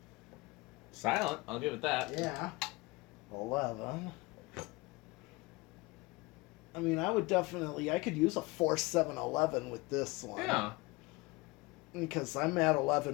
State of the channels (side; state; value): right; quieter; 23.8 dB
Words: Silent, I'll give it that. Yeah. 11. I mean, I could use a 4, 7, 11 with this one. Yeah. Because I'm at